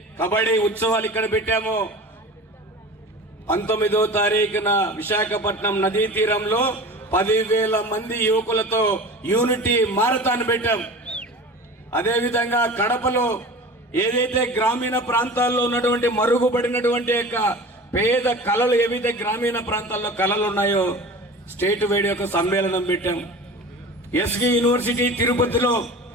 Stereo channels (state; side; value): normal; both; correlation 0.36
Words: కబడ్డీ ఉత్సవాలు ఇక్కడ పెట్టామో 19వ తారీఖున విశాఖపట్నం నదీ తీరంలో 10,000 మంది యువకులతో యూనిటీ మారథాన్ పెట్టాం. అదేవిధంగా కడపలో ఏదైతే గ్రామీణ ప్రాంతాల్లో ఉన్నటువంటి మరుగుపడినటువంటి యొక్క పేద కళలు, ఏవైతే గ్రామీణ ప్రాంతాల్లో కళలు ఉన్నాయో స్టేట్ వైడ్ యొక్క సమ్మేళనం పెట్టాం. ఎస్వి యూనివర్సిటీ తిరుపతిలో